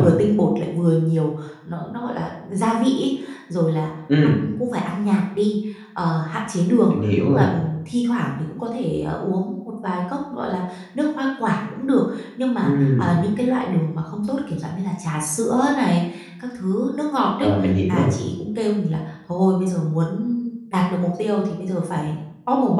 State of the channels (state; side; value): identical; both; correlation 1.00